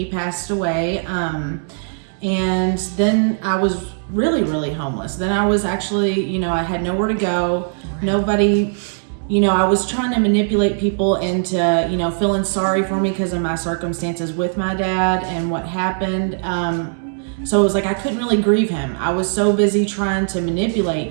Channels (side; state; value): left; silent; digital silence